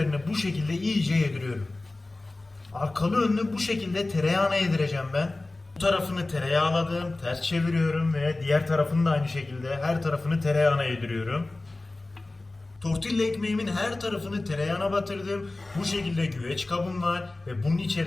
bu şekilde iyice yediriyorum. Arkalı önlü bu şekilde tereyağını yedireceğim ben. Bu tarafını tereyağladım, ters çeviriyorum ve diğer tarafını da aynı şekilde her tarafını tereyağına yediriyorum. Tortilla ekmeğimin her tarafını tereyağına batırdım. Bu şekilde güveç kabım var ve bunun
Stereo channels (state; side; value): quieter; right; 3.0 dB